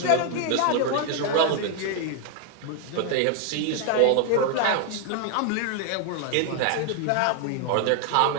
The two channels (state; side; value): different; both; correlation 0.00